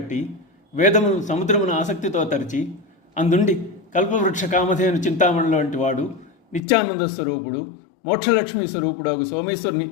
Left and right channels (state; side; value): drops out; right; at 6.6 s